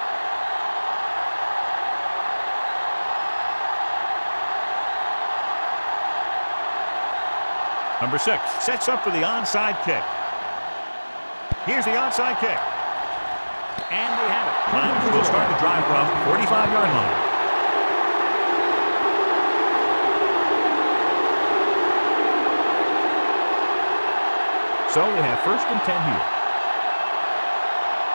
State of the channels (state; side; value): inverted; both; correlation -1.00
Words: Number 6 sets up for the onside kick. Here's the onside kick. And they have it. Niners will start the drive from 45-yard line. So we have 1st and 10 here.